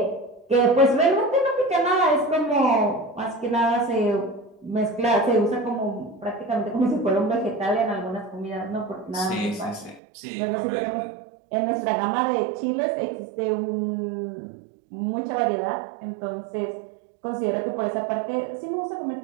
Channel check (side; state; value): left; drops out; at 10.0 s